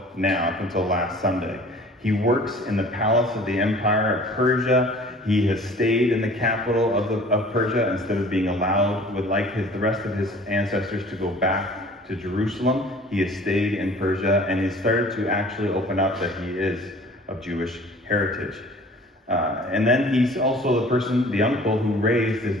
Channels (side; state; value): both; normal; correlation 0.48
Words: now, up until last Sunday. He works in the palace of the Empire of Persia. He has stayed in the capital of Persia instead of being allowed, the rest of his ancestors, to go back to Jerusalem. He has stayed in Persia, and he started to actually open up that he is of Jewish heritage. And then he's also the uncle who raised his